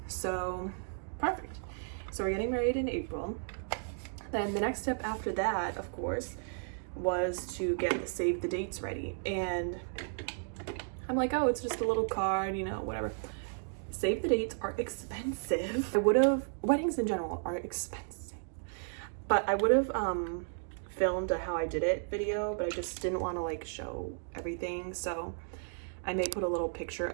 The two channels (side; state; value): left; silent; digital silence